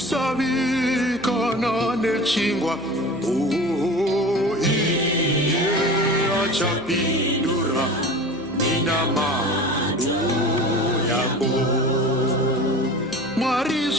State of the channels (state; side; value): noise; right; hum, 19 dB below the sound